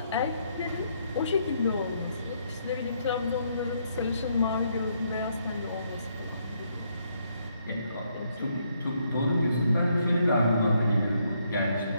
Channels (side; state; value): both; inverted; correlation -0.73